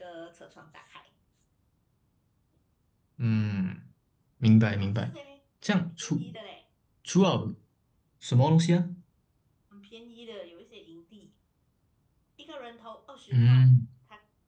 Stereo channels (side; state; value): both; identical; correlation 1.00